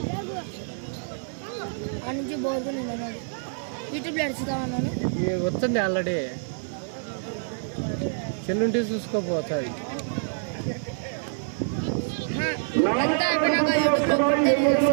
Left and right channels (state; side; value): silent; left; 60 dB below the other